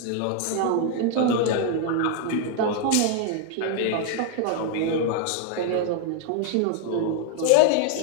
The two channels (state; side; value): different; both; correlation 0.00